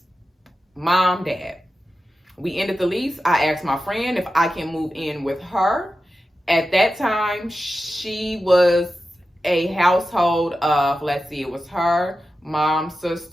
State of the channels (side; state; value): both; normal; correlation 0.92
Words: mom, dad. We ended the lease. I asked my friend if I can move in with her. At that time, she was a household of, it was her, mom,